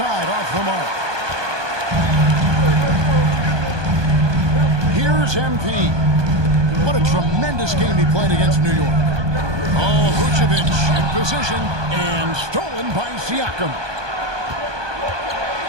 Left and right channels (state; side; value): late; left; 1.2 ms